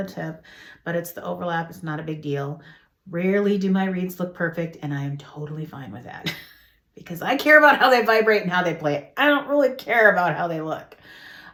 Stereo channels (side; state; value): both; identical; correlation 1.00